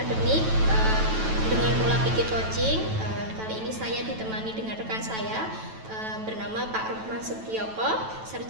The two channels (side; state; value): left; late; 9.1 ms